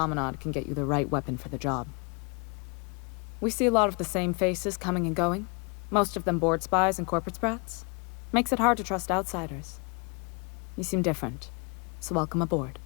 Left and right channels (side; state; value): right; quieter; 32.9 dB